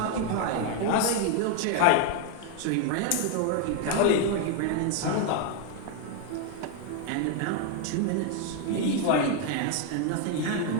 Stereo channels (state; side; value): different; both; correlation 0.00